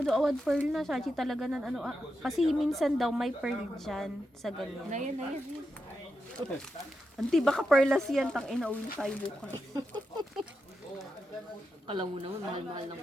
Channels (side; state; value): both; normal; correlation 0.87